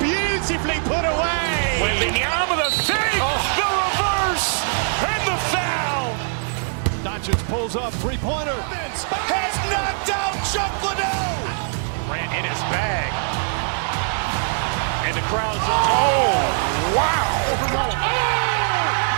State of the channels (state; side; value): silent; left; digital silence